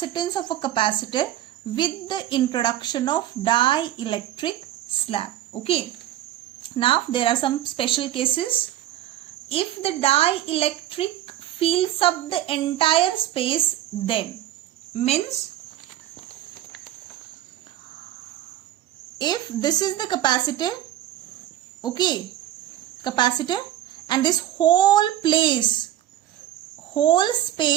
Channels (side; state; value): left; quieter; 13.1 dB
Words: of a capacitor with the introduction of dielectric slab. Okay. Now there are some special cases. If the dielectric fills up the entire space, then means if this is the capacitor, okay, capacitor, and this whole